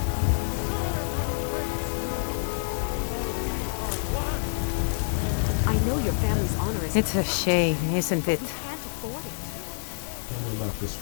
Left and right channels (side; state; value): right; silent; digital silence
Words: I know your family's honor is... It's a shame, isn't it? We can't afford it. Tell me about this